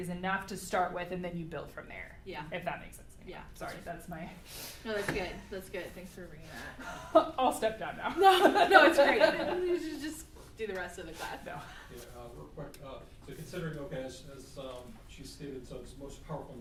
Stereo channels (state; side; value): identical; both; correlation 1.00